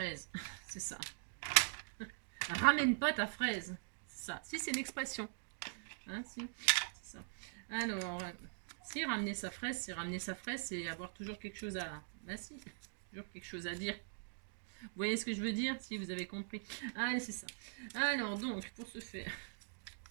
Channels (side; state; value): left; silent; digital silence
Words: C'est ça. Ramène pas ta fraise. C'est ça. Si, c'est une expression. Hein, si, c'est ça. Alors, si ramener sa fraise, c'est avoir toujours quelque chose à... Ben si, toujours quelque chose à dire. Vous voyez ce que je veux dire? Si, vous avez compris. Allez, c'est ça. Alors, donc, pour ce faire...